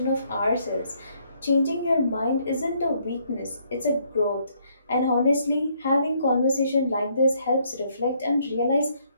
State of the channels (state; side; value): inverted; both; correlation -0.70